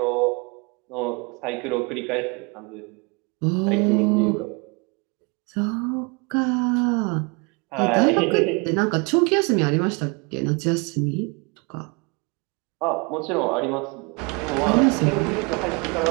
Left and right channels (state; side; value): quieter; left; 30.6 dB